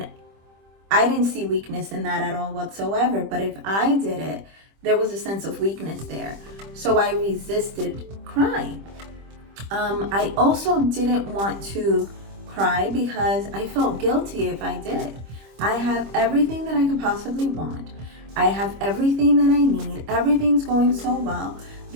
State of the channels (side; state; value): left; late; 25 ms